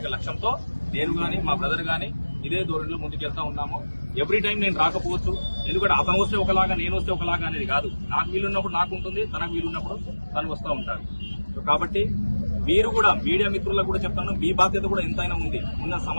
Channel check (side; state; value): both; inverted; correlation -1.00